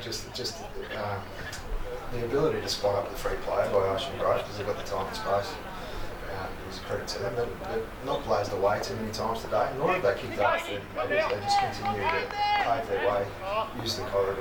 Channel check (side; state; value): both; identical; correlation 1.00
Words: just the ability to spot up the free player by Ocean Grove because they've got the time and space. It was a credit to them, but they've not blazed away too many times today, nor have they kicked up 30 metres. They just continue to pave their way, use the